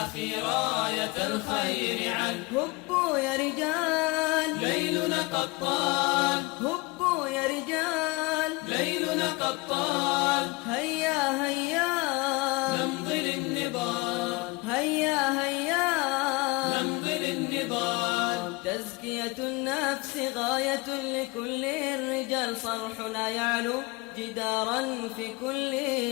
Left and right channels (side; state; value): right; quieter; 24.7 dB